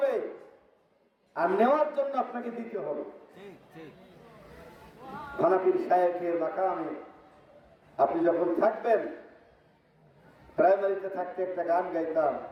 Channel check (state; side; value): identical; both; correlation 1.00